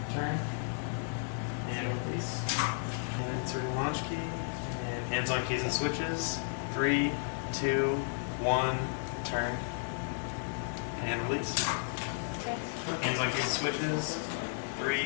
turn. And release. And insert the launch key. And hands on keys and switches. 3, 2, 1, turn. And release. Hands on keys and switches.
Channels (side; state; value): right; silent; digital silence